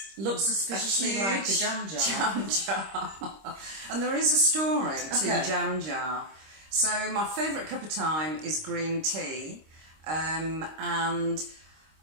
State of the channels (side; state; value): left; late; 26 ms